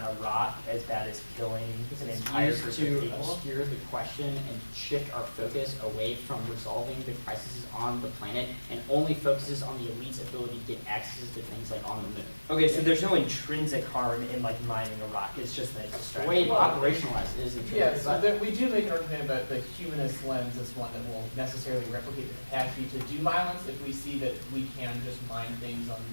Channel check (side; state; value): both; inverted; correlation -1.00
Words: a rock as bad as killing an entire Used group to of people? obscure the question and shift our focus away from resolving the crises on the planet and only focuses on the elite's ability to get access to things like on the moon. Okay, so there's no intrinsic harm in like mining a rock. It's just that it's The way it's Well, operationalized is Yeah, intrinsic. so that we do make an argument about the humanist lens as one that will necessarily replicate the capacity to do violence if we see that we can just mine things on